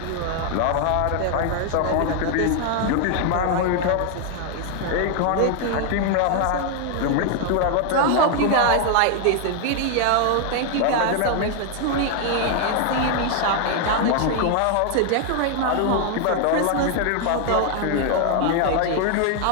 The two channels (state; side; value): different; both; correlation 0.00